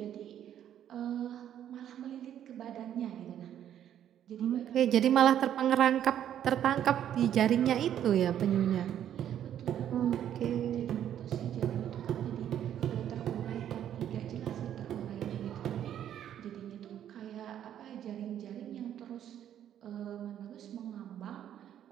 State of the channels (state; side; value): quieter; left; 10.4 dB